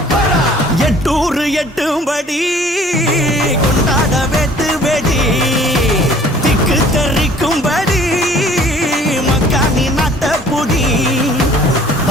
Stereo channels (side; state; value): both; normal; correlation 0.53